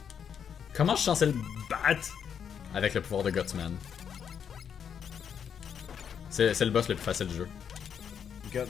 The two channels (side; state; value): right; quieter; 7.8 dB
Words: Comment je suis censé le battre avec le pouvoir de Gutsman? C'est le boss le plus facile du jeu.